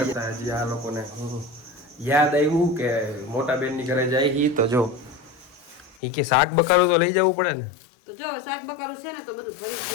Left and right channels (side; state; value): right; drops out; at 6.0 s